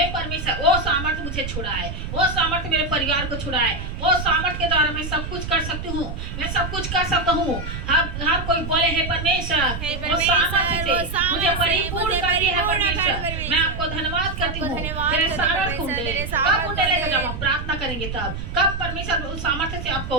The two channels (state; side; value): noise; right; rumble, 6 dB below the sound